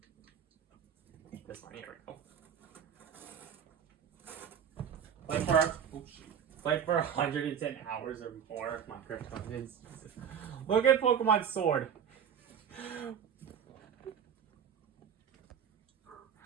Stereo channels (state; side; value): quieter; left; 8.1 dB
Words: This one. Here we go. Play for 110 hours or more. My krypton. Look at Pokemon Sword.